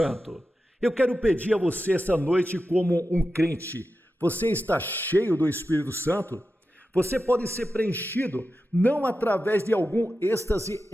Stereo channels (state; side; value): normal; both; correlation 0.91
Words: Eu quero pedir a você essa noite como um crente. Você está cheio do Espírito Santo? Você pode ser preenchido não através de algum êxtase